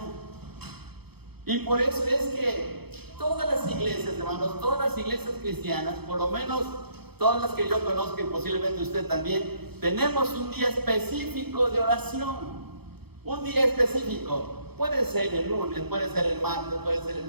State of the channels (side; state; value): left; late; 0.97 ms